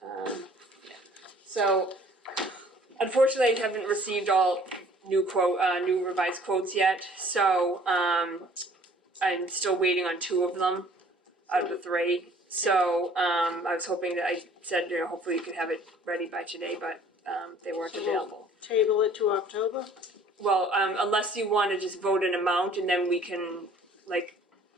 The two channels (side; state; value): both; normal; correlation 0.54